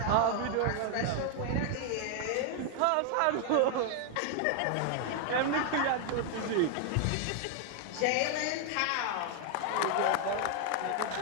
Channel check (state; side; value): different; both; correlation 0.00